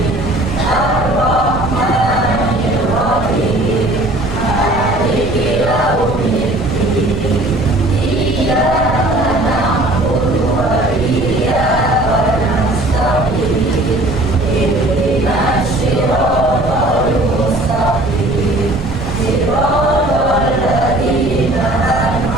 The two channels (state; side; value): noise; right; rumble, 8 dB below the sound